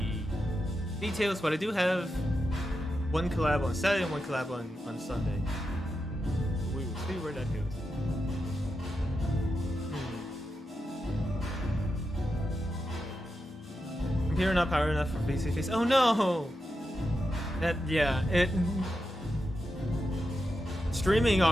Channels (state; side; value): normal; both; correlation 0.88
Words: details, but I do have one collab on Saturday and one collab on Sunday. We will see where that goes. Computer not power enough for face-to-face. Oh no! Streaming